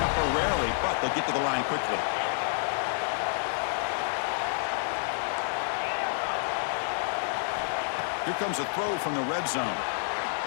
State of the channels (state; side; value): silent; right; digital silence